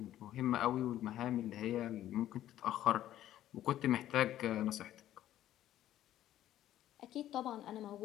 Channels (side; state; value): right; quieter; 12.7 dB